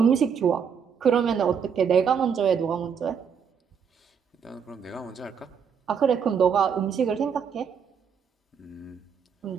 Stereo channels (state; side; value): quieter; left; 7.0 dB